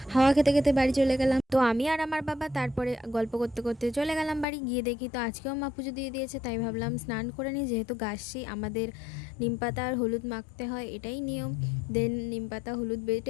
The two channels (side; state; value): right; drops out; at 4.5 s